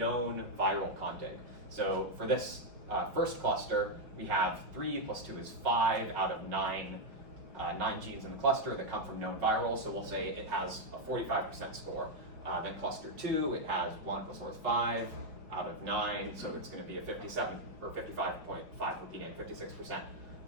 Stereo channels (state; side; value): late; left; 5.2 ms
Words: viral contig. So for this first cluster, we have 3 plus 2 is 5 out of 9 genes in the cluster that come from known virals, so we'll say it has a 45% score. Then cluster 2, it has 1 plus 4 is 5 out of 9, so it's going to be a 57 or 55.5 repeating 56%.